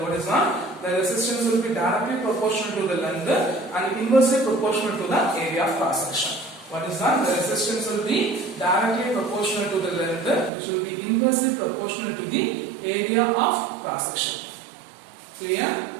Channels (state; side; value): drops out; left; at 10.5 s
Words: What is that? The resistance will be directly proportional to the length and inversely proportional to the area of cross section. What is that? The resistance will be directly proportional to the length, which will be inversely proportional to the area of cross section. Clear?